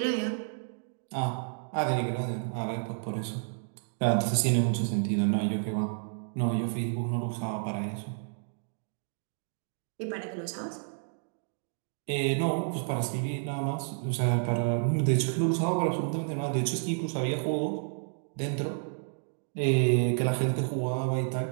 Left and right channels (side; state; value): left; silent; digital silence